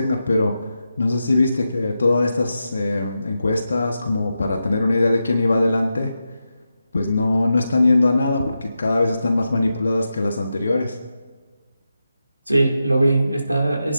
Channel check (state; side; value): inverted; both; correlation -0.89